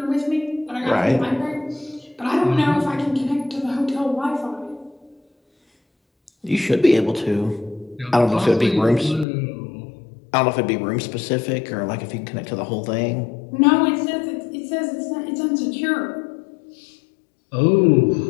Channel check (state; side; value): drops out; right; at 9.2 s